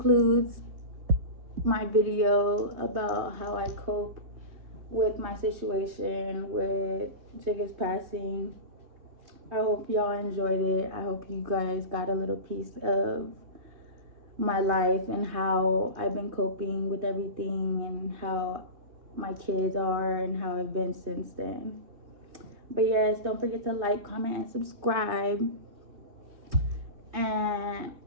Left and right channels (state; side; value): late; left; 3.2 ms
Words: my video about how I cope with my situation with Jigga's passing. I hope y'all enjoyed it. I hope you guys got a little piece of my life and how I've been coping with everything and how my kids are and how I've been since then. But yes, don't forget to like, comment, and subscribe. And